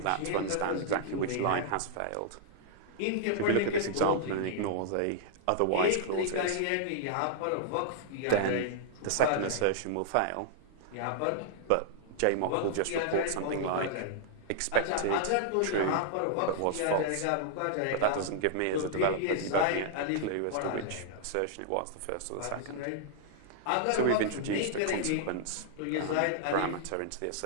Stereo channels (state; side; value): different; both; correlation -0.01